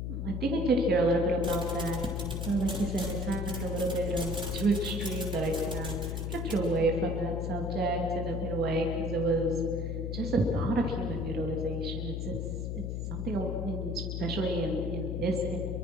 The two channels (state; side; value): noise; left; hum, 3 dB below the sound